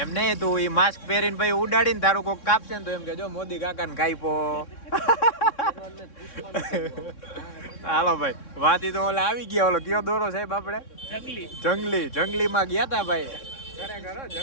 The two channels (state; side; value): late; right; 3.6 ms